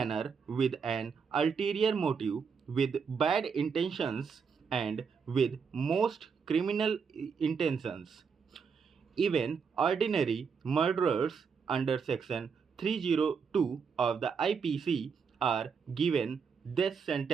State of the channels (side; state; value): left; quieter; 6.0 dB